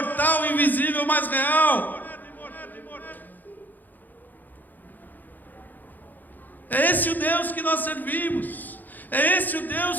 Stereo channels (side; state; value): right; late; 0.085 ms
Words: invisível, mas real. É esse o Deus que nós servimos. É esse o